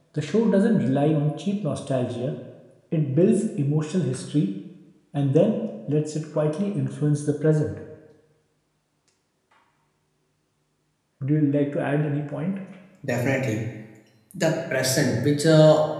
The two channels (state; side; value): identical; both; correlation 1.00